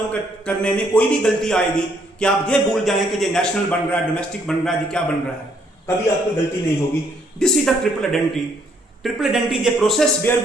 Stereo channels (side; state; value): both; normal; correlation 0.69